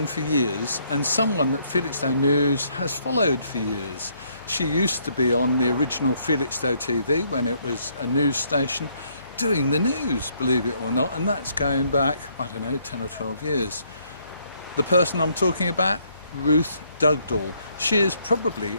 for years and someone that Felixstowe News has followed for years. She used to be on the original Felixstowe TV when it was a news station doing the news, believe it or not, and that's going back, I don't know, 10 or 12 years. The person I'm talking about, Ruth Dugdall. She is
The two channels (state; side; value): inverted; both; correlation -0.70